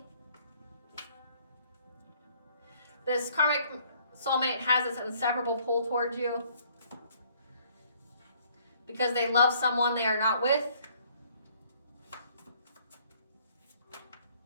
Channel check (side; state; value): both; inverted; correlation -0.61